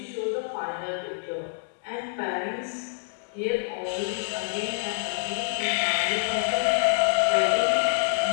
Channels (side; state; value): right; silent; digital silence